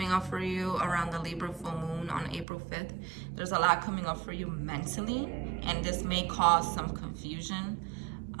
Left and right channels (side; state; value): left; drops out; at 2.5 s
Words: up for you around the Libra full moon on April 5th. There's a lot coming up for you mentally, and this may cause some confusion.